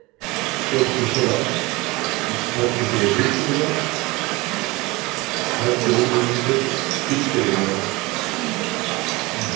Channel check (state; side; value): quieter; left; 22.9 dB